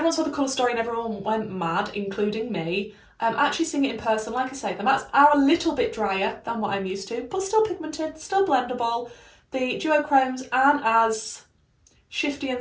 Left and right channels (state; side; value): identical; both; correlation 1.00